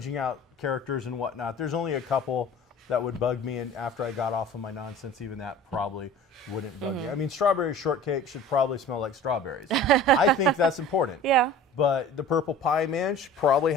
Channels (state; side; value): normal; both; correlation 0.42